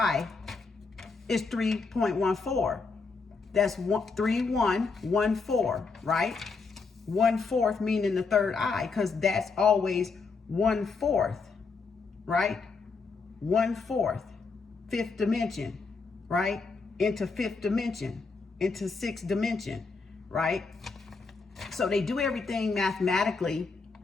is 3.14. That's 3.114, right? 1/4 meaning the third eye, because that's always 1/4, right? 1/4, 5th dimension, right? Into 5th dimension, into 6th dimension, right? So they do everything mathematically,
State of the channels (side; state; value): right; quieter; 4.5 dB